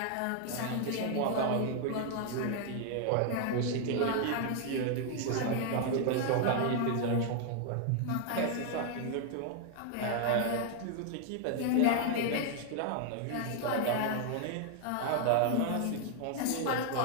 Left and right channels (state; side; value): different; both; correlation 0.00